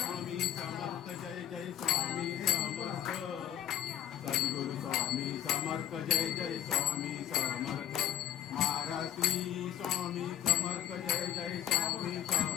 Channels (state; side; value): quieter; right; 10.8 dB